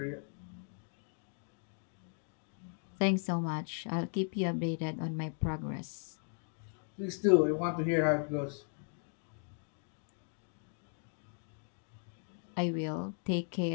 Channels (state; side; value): silent; right; 53 dB below the other